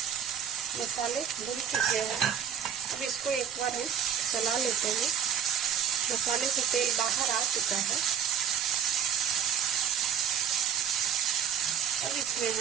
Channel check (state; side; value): quieter; left; 8.4 dB